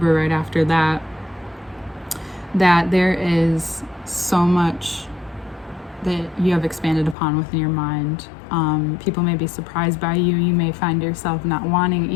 right after that, that there is so much that you have expanded upon within your mind. People may be surprised by you. You may find yourself not wanting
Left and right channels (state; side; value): drops out; right; at 7.2 s